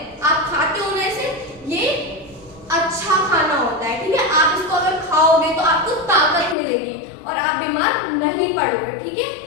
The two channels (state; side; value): drops out; right; at 6.6 s